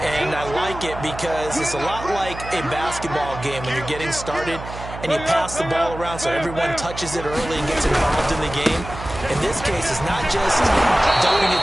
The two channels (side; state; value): right; noise; hum, 11 dB below the sound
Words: and I like it because it's a lot like a basketball game when you're getting started and you pass the ball around so everyone touches it early and gets involved in the game. In this case, it's not just dumping it